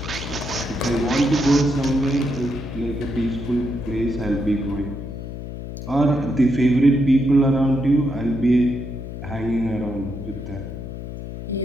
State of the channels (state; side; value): noise; left; hum, 9 dB below the sound